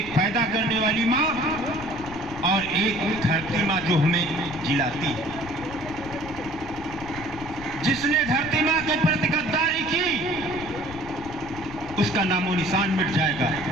पैदा करने वाली माँ और एक धरती माँ जो हमें जिलाती है। जिसने धरती माँ के प्रति गद्दारी की, उसका नामो निशान मिट जाएगा।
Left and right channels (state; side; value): noise; left; rumble, 15 dB below the sound